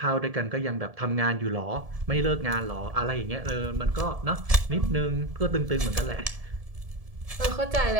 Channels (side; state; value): left; late; 1.7 ms